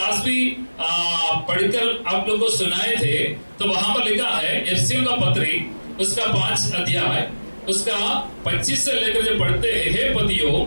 भी पढ़कर आप लोगों को सुनाए थे। तो वहां पर लिखा है एफिसियों का पत्री उसका 5 अध्याय उसका 25 से लेकर जब पढ़ते हैं, हे पतियों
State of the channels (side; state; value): both; inverted; correlation -1.00